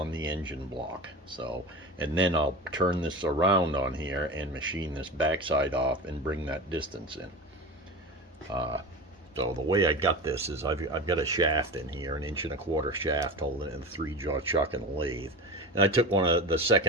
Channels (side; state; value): both; normal; correlation 0.29